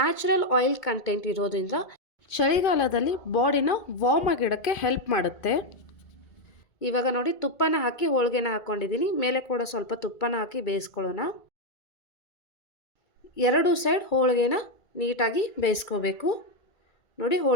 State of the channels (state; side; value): late; right; 2.3 ms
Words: ಆಯಿಲ್ ಕಂಟೆಂಟ್ ಇರೋದ್ರಿಂದ ಚಳಿಗಾಲದಲ್ಲಿ ಬಾಡಿನ ವಾರ್ಮ್ ಆಗಿಡೋಕ್ಕೆ ಹೆಲ್ಪ್ ಮಾಡುತ್ತೆ. ಇವಾಗ ನೋಡಿ, ತುಪ್ಪನ ಹಾಕಿ ಹೋಳಿಗೆನ ಹಾಕ್ಕೊಂಡಿದ್ದೀನಿ. ಮೇಲೆ ಕೂಡ ಸ್ವಲ್ಪ ತುಪ್ಪನ ಹಾಕಿ ಬೇಯಿಸ್ಕೊಳ್ಳೋಣ. 2 ಸೈಡ್ ಹೋಳಿಗೆನ ನೀಟಾಗಿ ಬೇಯಿಸ್ಕೋಬೇಕು. ನೋಡಿ,